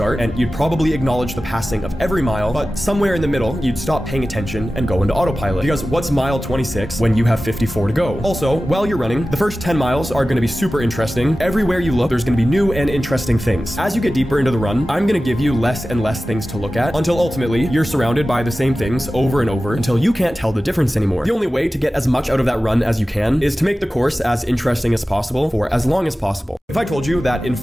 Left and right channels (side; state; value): both; normal; correlation 0.95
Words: and you'd probably acknowledge the passing of every mile, but somewhere in the middle, you'd stop paying attention and go into autopilot. Because what's mile 26 when you have 54 to go? Also, while you're running, the first 10 miles are going to be super interesting. Everywhere you look, there's going to be new and interesting things. As you get deeper into the run, I'm going to give you less and less things to look at until ultimately you're surrounded by the same things over and over until you can't tell the difference anymore. The only way to get as much out of that run as you can is to make the course as interesting as possible for as long as possible. If I told you that in